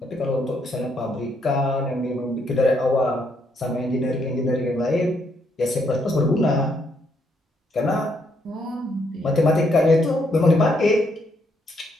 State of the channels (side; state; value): both; normal; correlation 0.74